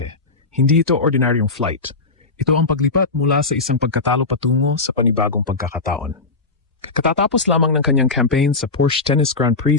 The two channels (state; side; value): quieter; right; 3.8 dB